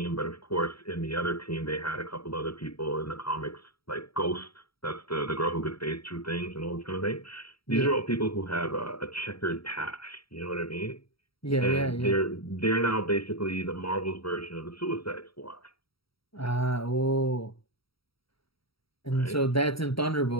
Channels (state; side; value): late; right; 0.75 ms